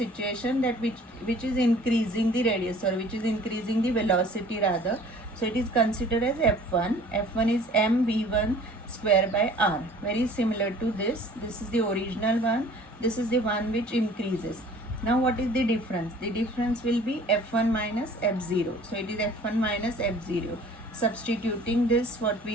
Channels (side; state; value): both; normal; correlation 0.50